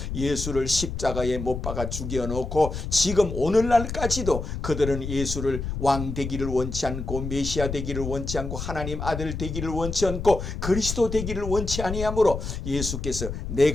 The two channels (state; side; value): noise; left; rumble, 5 dB below the sound